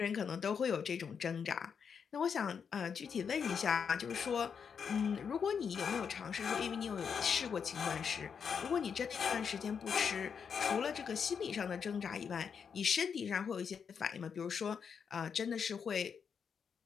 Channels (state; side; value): quieter; right; 6.7 dB